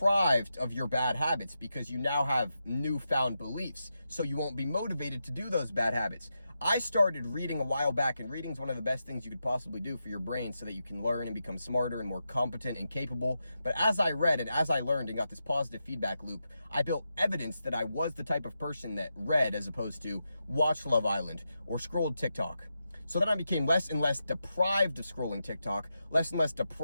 of your bad habits because you now have newfound beliefs. So you won't be motivated to do those bad habits. I started reading a while back, and reading is one of the best things you could possibly do for your brain so that you can learn and become smarter and more competent and capable. But as I read and as I learned and got this positive feedback loop, I built evidence that I was the type of person that read as opposed to watched Love Island or scrolled TikTok. So then I became less and less deprived of scrolling TikTok, less and less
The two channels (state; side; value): inverted; both; correlation -0.87